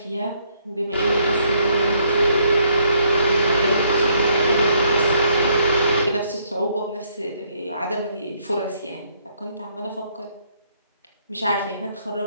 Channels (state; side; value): inverted; both; correlation -0.70